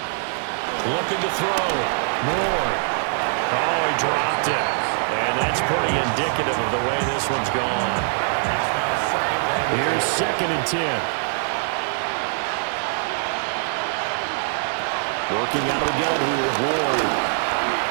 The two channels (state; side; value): silent; left; digital silence